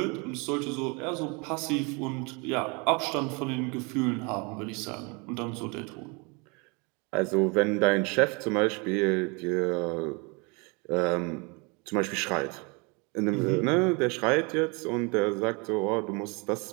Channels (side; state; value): left; quieter; 30.4 dB